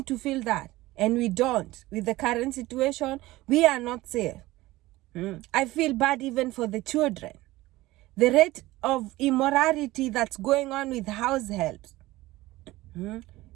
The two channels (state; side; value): quieter; left; 18.2 dB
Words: to feel that. And we don't. With the current situation, we are not safe. I feel bad even for the children. The rate of immorality that's going on with house helps.